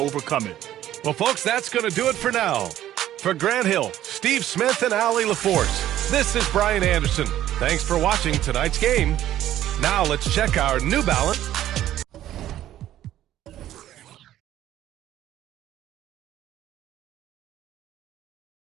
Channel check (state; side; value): quieter; left; 12.7 dB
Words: it. Well, folks, that's going to do it for now. For Grant Hill, Steve Smith, and Allie LaForce, this is Brian Anderson. Thanks for watching tonight's game. Now let's check our New Balance